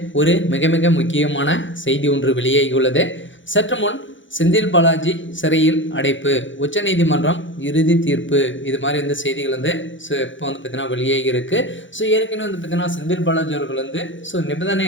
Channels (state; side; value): late; right; 0.55 ms